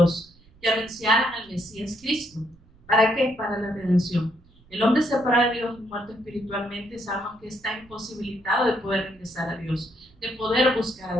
que anunciaran al Mesías Cristo. ¿Para qué? Para la redención. El hombre separado de Dios y muerto espiritualmente, sabemos que está imposibilitado de poder regresar a Dios, de poder buscar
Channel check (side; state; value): right; noise; rumble, 28 dB below the sound